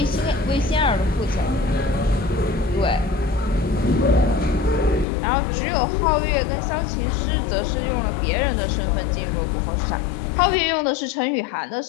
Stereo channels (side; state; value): right; drops out; at 5.1 s